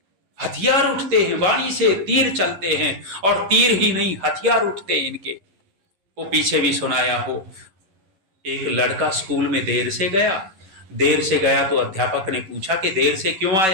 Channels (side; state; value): left; late; 11 ms